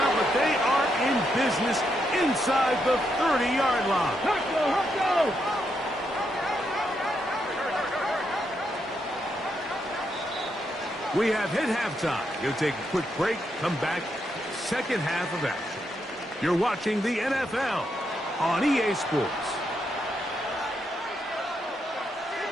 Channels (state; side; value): normal; both; correlation 0.80